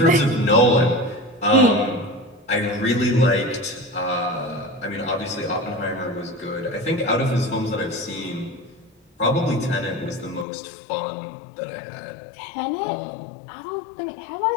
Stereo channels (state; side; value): drops out; right; at 10.5 s